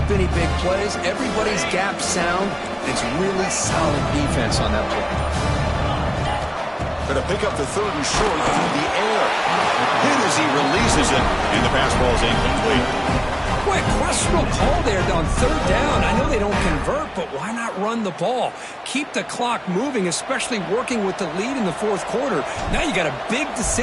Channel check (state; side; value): identical; both; correlation 1.00